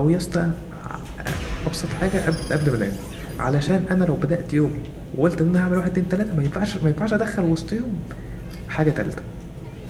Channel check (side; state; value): both; identical; correlation 1.00